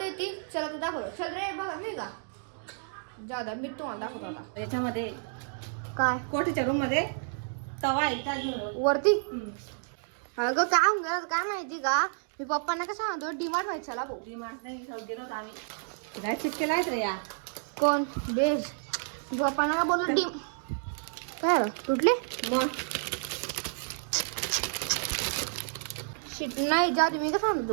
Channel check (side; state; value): left; silent; digital silence